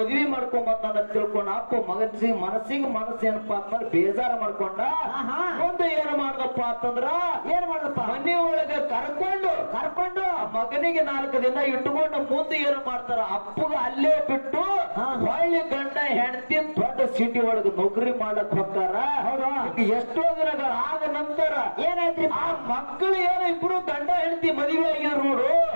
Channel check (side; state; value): both; inverted; correlation -1.00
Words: ಮಾಡ್ಕೊಂಬಂದ ತಿಳ್ಕೊಂಡ ಅಪ್ಪ ಮನಸ್ಸಿಗೆ ಮನಸ್ಸು ಏನಪ್ಪಾ ಅಂತಂದ್ರೆ ಬೇಜಾರ ಮಾಡ್ಕೊಂಡ. ಮುಂದೆ ಏನ್ ಮಾಡ್ದಪ್ಪ ಅಂತಂದ್ರ ಏನ್ ಮಾಡದಪ್ಪ? ಮನೆ ಒಳಗೆ ಕರ್ಕೊಂಡು ಮಗನಿಗೆ 4 ದಿನ ಇಟ್ಕೊಂಡು ಮುಂದೆ ಏನ್ ಮಾಡ್ತಾರ? ಅಪ್ಪಗ ಅಲ್ಲೇ ಬಿಟ್ಟು ಹೊಳ್ಳಿ ಗಂಡ ಹೆಂಡತಿ ದೊಡ್ಡ ಸಿಟಿ ಒಳಗೆ ನೌಕರಿ ಮಾಡಕ್ ಹೋಗ್ತಾರ. ಎಷ್ಟೋ ದಿನಗಳ ಆದ ನಂತರ ಏನಾಯ್ತ್ರಿ? ಆ ಮಕ್ಕಳು ಏನೋ ಇಬ್ರು ಗಂಡ ಹೆಂಡತಿ ಮದುವೆ ಆಗಿದ್ರು ನೋಡು.